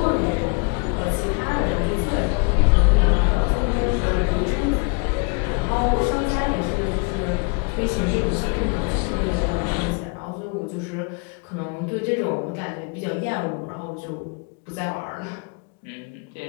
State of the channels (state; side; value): quieter; right; 34.4 dB